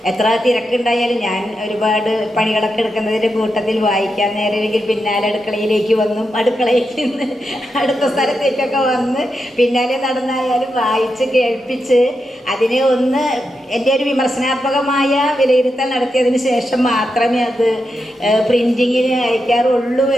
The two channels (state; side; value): normal; both; correlation 0.86